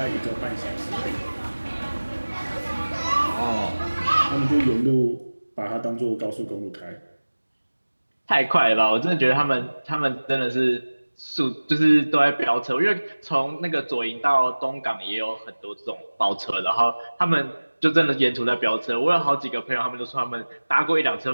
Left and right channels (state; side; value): inverted; both; correlation -1.00